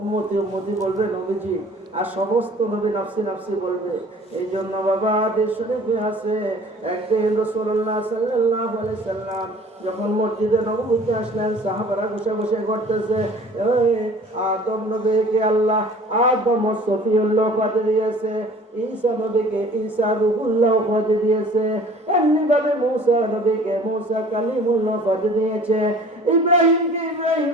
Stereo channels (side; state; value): both; normal; correlation 0.48